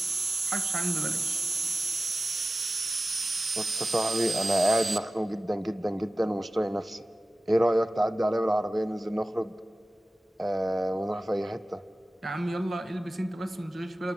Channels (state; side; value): normal; both; correlation 0.96